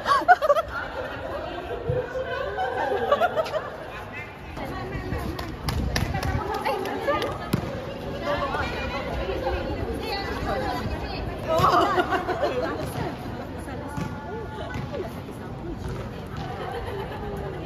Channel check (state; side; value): identical; both; correlation 1.00